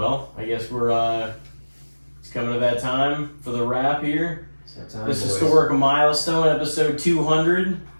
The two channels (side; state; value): both; inverted; correlation -1.00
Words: I guess we're it's coming to that time for the wrap here. This historic milestone, episode 200.